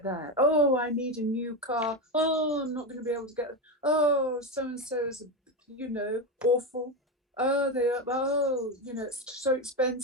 that. Oh, I need a new car. Oh, I'm not going to be able to get it. Oh, so-and-so is, awful. Oh, it's so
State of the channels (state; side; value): normal; both; correlation 0.14